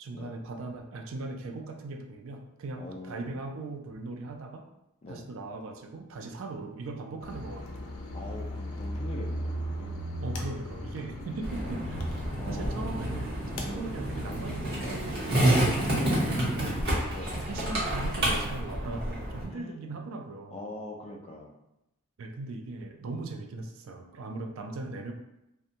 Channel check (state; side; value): normal; both; correlation 0.65